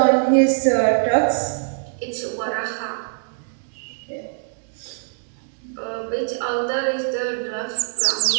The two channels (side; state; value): left; silent; digital silence